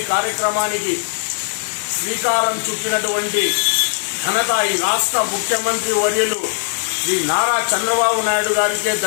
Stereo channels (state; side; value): silent; right; digital silence